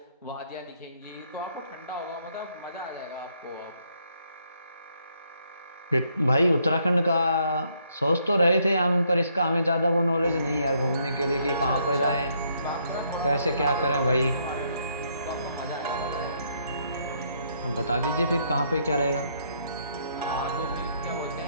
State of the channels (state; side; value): inverted; both; correlation -0.71